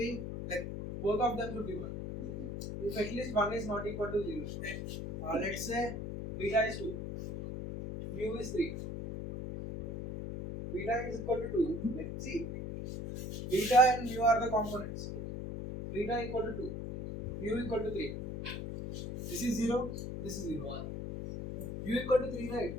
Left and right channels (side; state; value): left; noise; hum, 5 dB below the sound